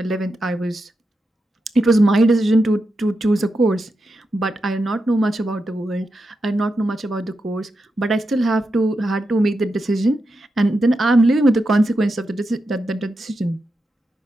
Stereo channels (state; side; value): normal; both; correlation 0.88